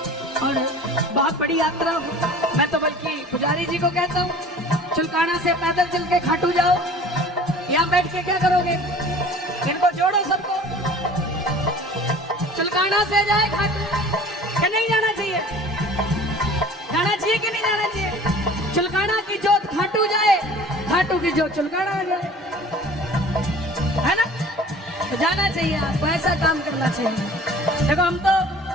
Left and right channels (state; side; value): normal; both; correlation 0.45